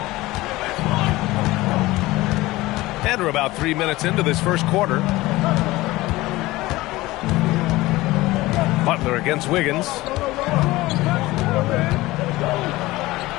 And we're about 3 minutes into this first quarter. Butler against Wiggins.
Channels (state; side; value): quieter; right; 19.0 dB